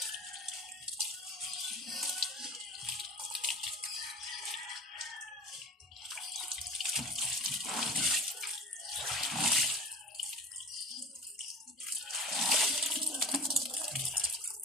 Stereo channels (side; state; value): both; normal; correlation 0.36